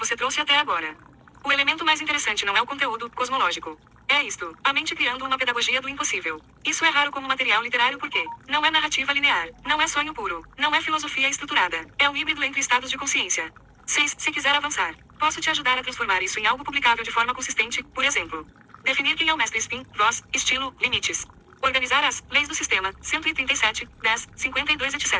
trouxe até agora. O elemento mais interessante não é o conteúdo cosmológico. É isto, a mente criando uma pedagogia do impossível. Isso é raro como material literário porque não é narrativa linear, não é sonho puro, não é filosofia estruturada, é um híbrido entre estados de consciência. 6. Se quiser avançar, posso te ajudar a transformar isso em algo publicável de forma consistente, por exemplo. Definir quem é o mestre Spin, voz, estilo, limites. Organizar as leis do sistema, 137, 10, 52,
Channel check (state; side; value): identical; both; correlation 1.00